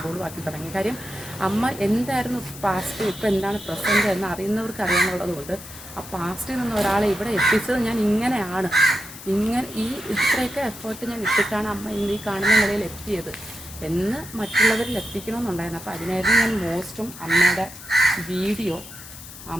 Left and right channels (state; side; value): noise; left; hiss, 15 dB below the sound